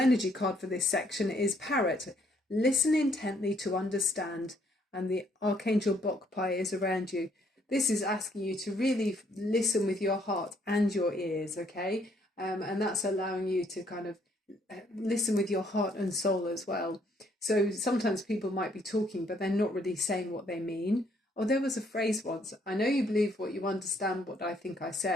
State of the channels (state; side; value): normal; both; correlation 0.68